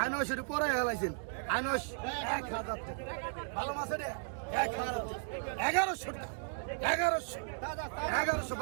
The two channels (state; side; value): silent; left; digital silence